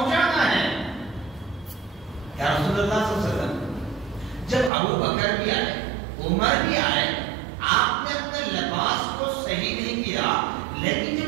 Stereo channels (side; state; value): left; drops out; at 4.7 s